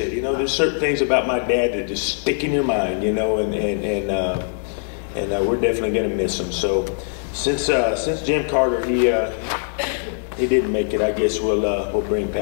you know, there's certain things about my dad that just stick in your mind, you know, and we're definitely going to miss him. So since Jim Carter, he didn't make it, I guess we'll bring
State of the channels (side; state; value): right; silent; digital silence